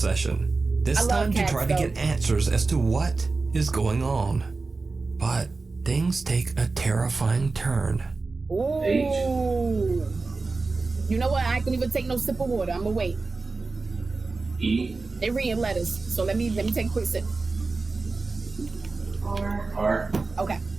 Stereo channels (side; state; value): left; quieter; 3.8 dB